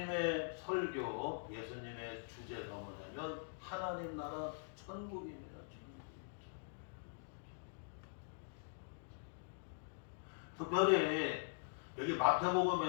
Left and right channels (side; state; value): right; silent; digital silence